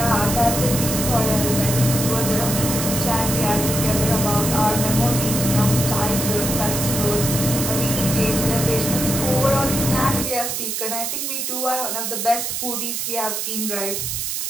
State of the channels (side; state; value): right; noise; hiss, 2 dB below the sound